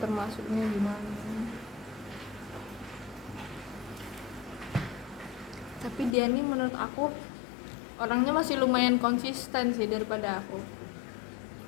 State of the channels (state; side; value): drops out; right; at 6.2 s